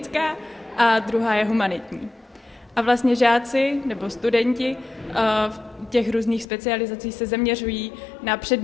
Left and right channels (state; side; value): drops out; right; at 6.5 s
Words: a druhá je humanitní. A vlastně žáci nebo studenti v těch různých specializací se zaměřují na